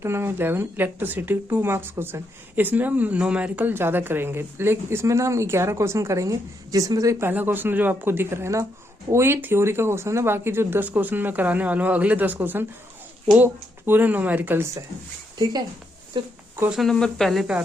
number 11 electricity 2 marks question. इसमें हम न्यूमेरिकल ज़्यादा करेंगे, लेकिन इसमें ना हम 11 क्वेश्चन करेंगे, जिसमें से पहला क्वेश्चन जो आपको दिख रहा है ना, वो ये थ्योरी का क्वेश्चन है। बाकी जो 10 क्वेश्चन मैं कराने वाला हूँ, अगले 10 क्वेश्चन वो पूरे न्यूमेरिकल्स है। ठीक है, तो क्वेश्चन नंबर पहले पे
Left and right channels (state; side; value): normal; both; correlation 0.79